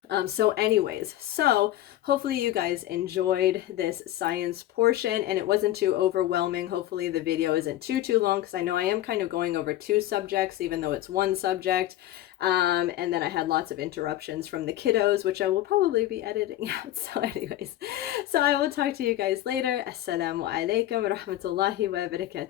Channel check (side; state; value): right; quieter; 14.0 dB